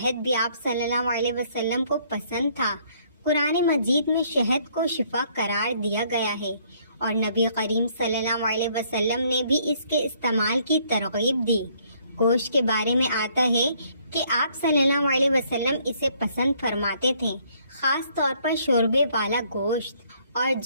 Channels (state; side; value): inverted; both; correlation -0.65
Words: بھی آپ صلی اللہ علیہ وسلم کو پسند تھا۔ قرآن مجید میں شہد کو شفا قرار دیا گیا ہے، اور نبی کریم صلی اللہ علیہ وسلم نے بھی اس کے استعمال کی ترغیب دی۔ گوشت کے بارے میں آتا ہے کہ آپ صلی اللہ علیہ وسلم اسے پسند فرماتے تھے، خاص طور پر شوربے والا گوشت، اور